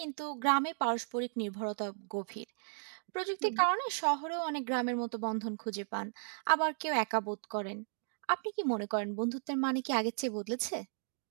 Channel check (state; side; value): silent; left; digital silence